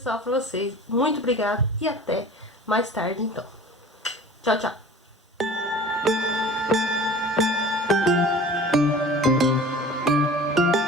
pra vocês. Muito obrigada e até mais tarde então. Tchau, tchau.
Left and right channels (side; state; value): both; normal; correlation 0.42